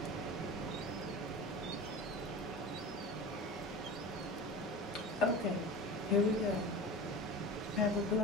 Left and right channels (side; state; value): both; normal; correlation 0.32